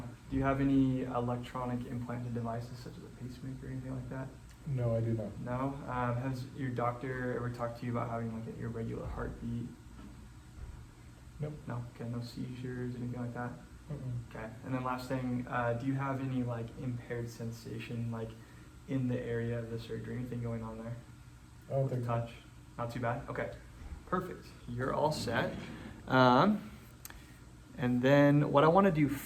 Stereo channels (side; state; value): both; identical; correlation 1.00